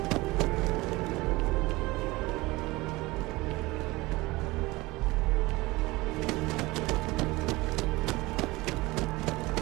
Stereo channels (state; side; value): quieter; left; 21.3 dB